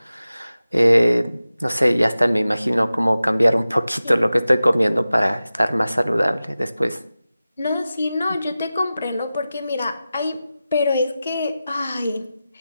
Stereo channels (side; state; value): both; inverted; correlation -0.95